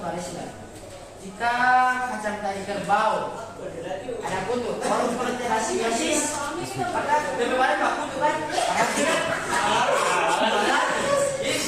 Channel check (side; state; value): both; identical; correlation 1.00